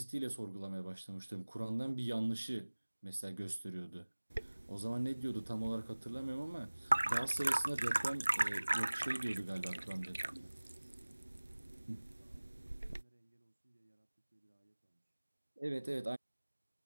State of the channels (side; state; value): both; inverted; correlation -1.00